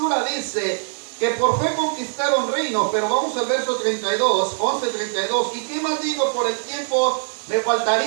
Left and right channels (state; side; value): silent; left; digital silence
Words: dice que por fe conquistaron reinos, pero vamos al verso 32, 11:32. ¿Y qué más digo? Por el tiempo me